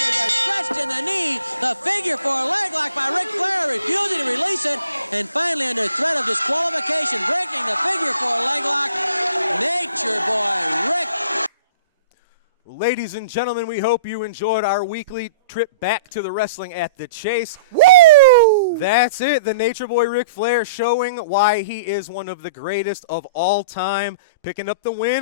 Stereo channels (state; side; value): inverted; both; correlation -0.46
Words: are stretched in the knee. The figure four leg lock by Ric Flair, refusing to release it, and finally under threat of disqualification, breaking the figure four leg lock. Nature Boy Ric. Ladies and gentlemen, we hope you enjoyed our weekly trip back to the Wrestling at the Chase. Woo! That's it. The Nature Boy Ric Flair showing why he is one of the greatest of all time, picking up the